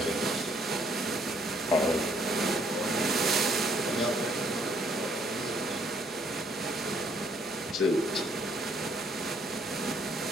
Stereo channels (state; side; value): normal; both; correlation 0.66